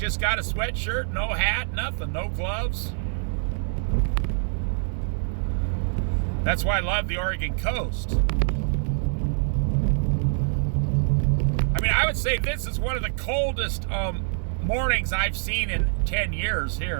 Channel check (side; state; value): left; silent; 62 dB below the other